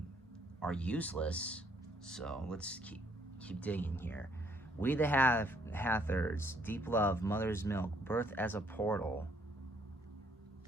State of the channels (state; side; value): normal; both; correlation 0.66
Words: useless. So let's keep digging here. We the Hathors, deep love, mother's milk, birth as a portal.